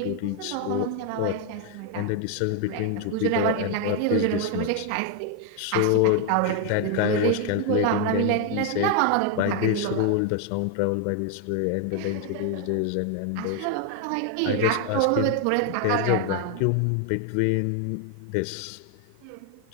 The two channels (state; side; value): different; both; correlation 0.01